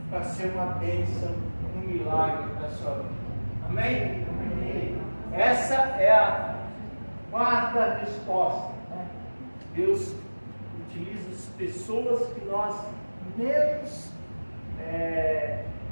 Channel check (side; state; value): both; inverted; correlation -1.00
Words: para ser uma bênção, um milagre na sua vida. Amém? Amém. Essa é a quarta resposta. Né? Deus utiliza as pessoas que nós menos